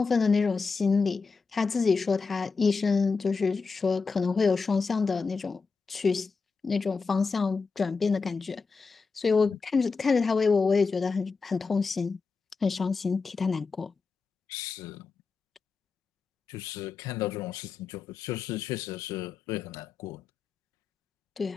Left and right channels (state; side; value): quieter; right; 4.7 dB